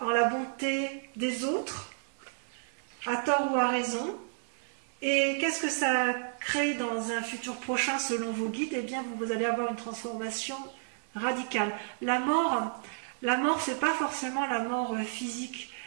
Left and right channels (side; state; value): left; silent; digital silence